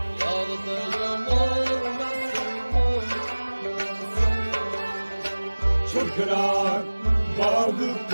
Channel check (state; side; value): inverted; both; correlation -1.00